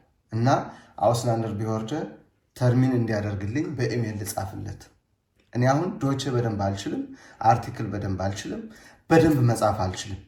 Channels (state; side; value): identical; both; correlation 1.00